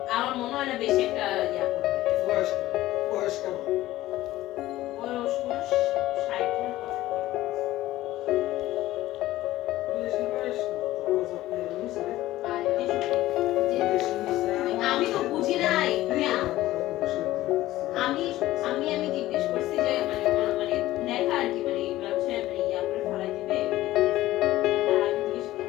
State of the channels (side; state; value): right; quieter; 15.9 dB